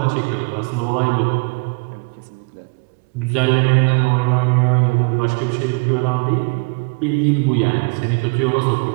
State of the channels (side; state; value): left; quieter; 32.2 dB